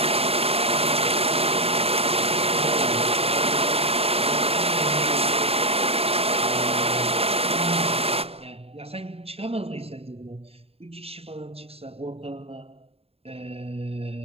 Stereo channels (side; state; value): left; late; 0.29 ms